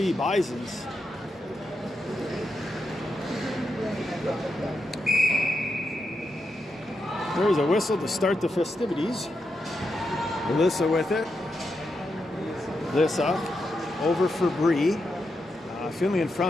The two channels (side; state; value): both; normal; correlation 0.85